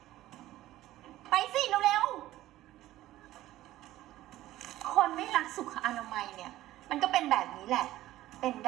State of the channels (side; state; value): left; quieter; 15.1 dB